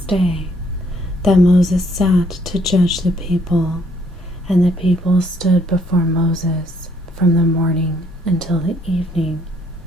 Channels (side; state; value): both; normal; correlation 0.67